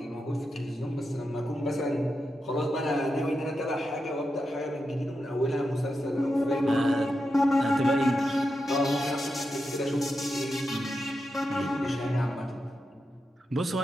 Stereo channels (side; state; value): both; normal; correlation 0.88